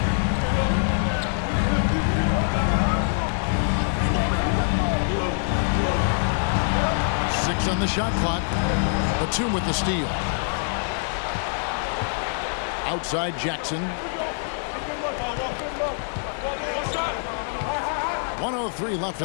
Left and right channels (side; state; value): right; silent; digital silence